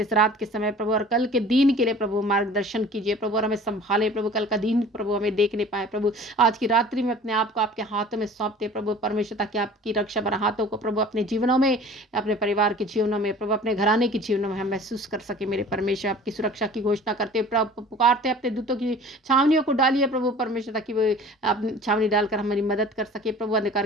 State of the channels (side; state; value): both; normal; correlation 0.45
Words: इस रात के समय प्रभु, और कल के दिन के लिए प्रभु मार्गदर्शन कीजिए प्रभु, और हमें संभाले प्रभु, कल का दिन प्रभु हमें देखने पाए प्रभु। आज की रात्रि में अपने आप को आपके हाथों में सौंपते प्रभु परमेश्वर, ताकि आपकी रक्षा भरा हाथों को प्रभु अपने जीवनों में, अपने परिवार के जीवनों में प्रभु, अपने घराने के जीवनों में हम महसूस कर सके मेरे परमेश्वर। आपकी सुरक्षा की घोषणा करते प्रभु, पुकारते अपने दूतों की छावनियों को डालिए प्रभु परमेश्वर, ताकि वो अपनी छावनी डालकर हमारी मदद कर सके प्रभु। अंधकार